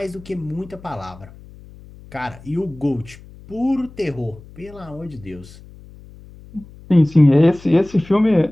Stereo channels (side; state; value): left; noise; hum, 20 dB below the sound